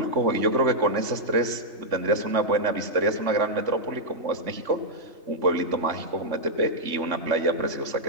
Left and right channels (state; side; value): late; left; 3.5 ms